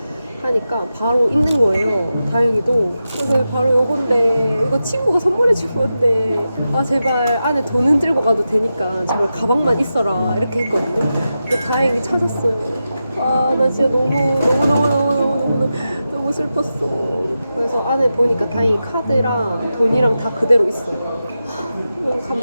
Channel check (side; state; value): both; inverted; correlation -0.91